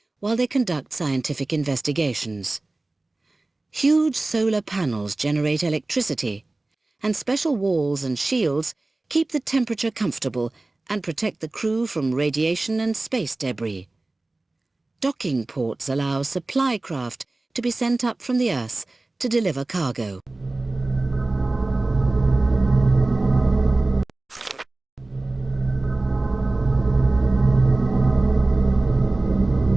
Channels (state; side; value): quieter; left; 3.0 dB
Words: while they conduct scientific investigations. Huge solar panels generate electricity, and special walls and shields keep the temperature comfortable and protect the crew from radiation and space debris. Docking ports allow supply craft to be sent up from the Earth to deliver cargo.